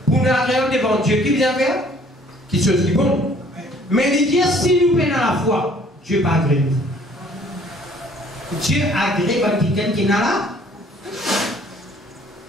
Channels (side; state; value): both; normal; correlation 0.58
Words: Pour nous agréable devant Dieu, qui vient faire? Qui chose qui est bon. Mais il dit, si nous venons à la foi, Dieu va agréer nous. Dieu agrée quelqu'un qui est là.